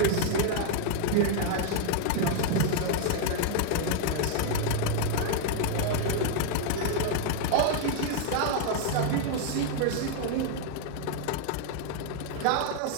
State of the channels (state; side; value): different; both; correlation 0.00